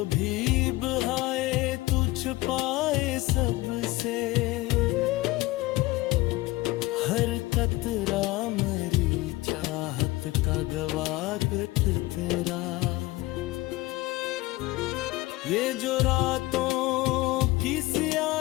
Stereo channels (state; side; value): quieter; right; 19.6 dB